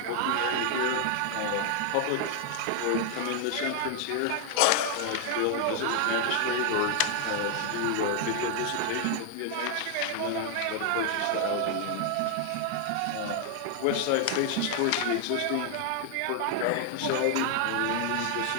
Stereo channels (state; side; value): different; both; correlation 0.00